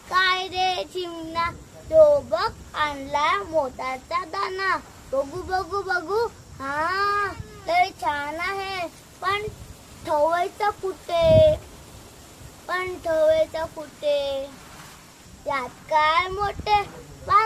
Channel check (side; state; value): both; identical; correlation 1.00